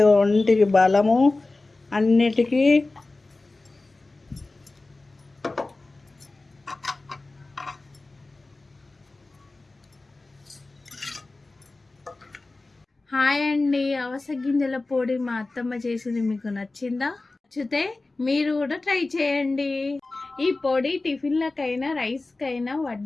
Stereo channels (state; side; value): quieter; right; 3.2 dB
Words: ఒంటికి బలము అన్నిటికీ. హాయ్ అండి, అవస గింజల పొడి మా అత్తమ్మ చేసింది మీకు నచ్చిందా? నచ్చితే మీరు కూడా ట్రై చేయండి. ఈ పొడి టిఫిన్లకైనా రైస్కైనా